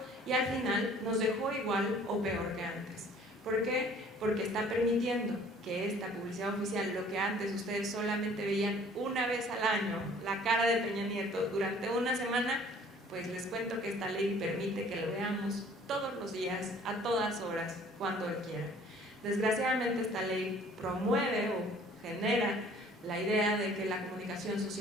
y al final nos dejó igual o peor que antes. ¿Por qué? Porque está permitiendo que esta publicidad oficial, lo que antes ustedes solamente veían una vez al año, la cara de Peña Nieto durante una semana, pues les cuento que esta ley permite que lo veamos todos los días, a todas horas, cuando él quiera. Desgraciadamente esta ley promueve o genera la idea de que la comunicación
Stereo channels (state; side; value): normal; both; correlation 0.54